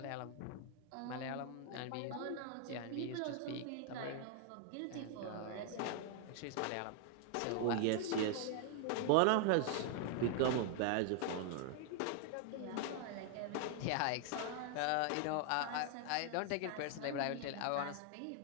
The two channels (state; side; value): different; both; correlation 0.00